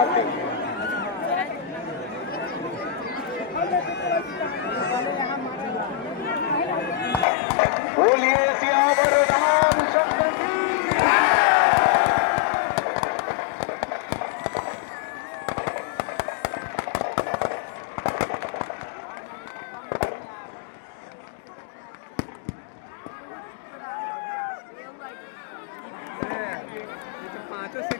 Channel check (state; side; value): drops out; right; at 7.2 s